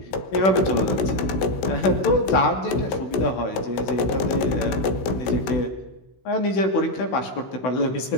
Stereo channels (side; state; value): right; late; 16 ms